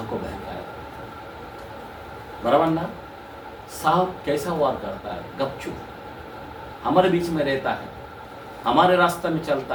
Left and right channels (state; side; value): identical; both; correlation 1.00